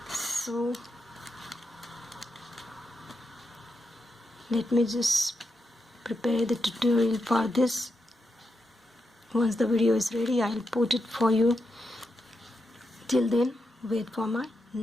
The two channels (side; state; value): both; normal; correlation 0.85